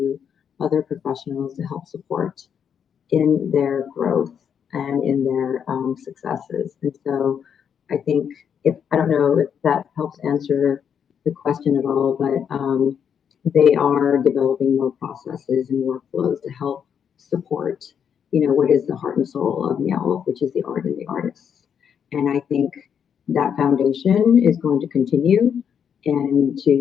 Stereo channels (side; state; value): right; quieter; 7.8 dB